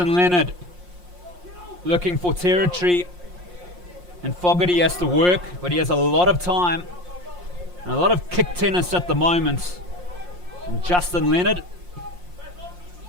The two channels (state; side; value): late; left; 5.6 ms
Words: Leonard looking for territory, and Fogarty has to work, but he has a lot of time and a lot of kick tennis at the moment. And Justin Leonard